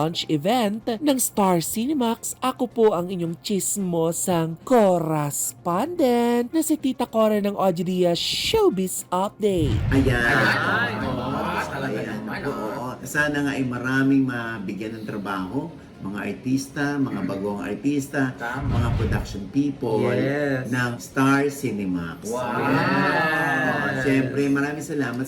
event ng Star Cinemax, ako po ang inyong chismosang correspondent na si Tita Cora ng Ojidia Showbiz Update. Ayan. Talaga Ayan. naman. Oo. Sana nga ay maraming mabigyan ng trabaho, mga artista, mga bagong artista, Tama. mga production people Yes. ng Star Cinemax. Wow. Ayan. Siyempre, maraming salamat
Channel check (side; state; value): both; identical; correlation 1.00